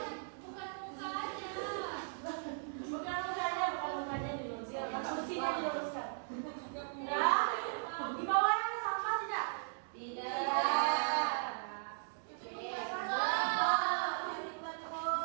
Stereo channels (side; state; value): left; silent; digital silence